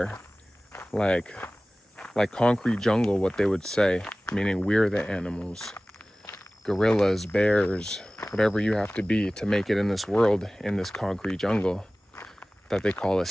like concrete jungle, what they would say, meaning we're the animals, gorillas, bears, whatever you have to be to make it in this world, in this concrete jungle that they call a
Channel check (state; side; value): normal; both; correlation 0.98